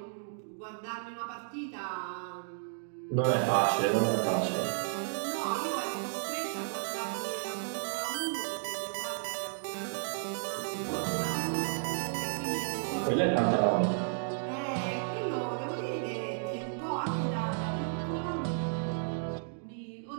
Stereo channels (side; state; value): left; silent; digital silence